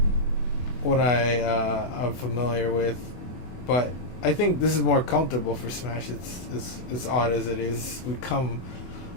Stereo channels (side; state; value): right; late; 24 ms